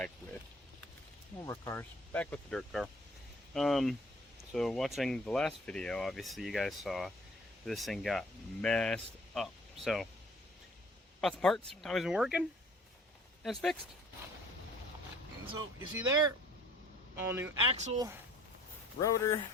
with more cars. Back with the dirt car. So watching the last video, obviously you guys saw this thing got messed up. So, bought the parts, how it's been working, and it's fixed. And so, you see there, all new axle, rotor,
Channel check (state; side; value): normal; both; correlation 0.54